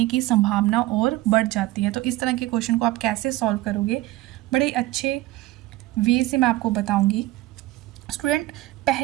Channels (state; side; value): quieter; left; 17.3 dB